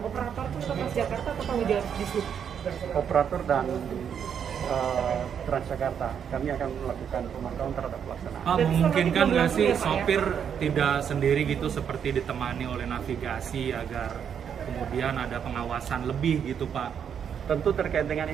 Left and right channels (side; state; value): left; quieter; 8.0 dB